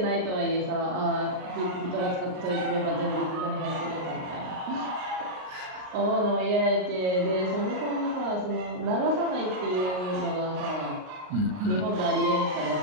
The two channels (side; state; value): left; late; 38 ms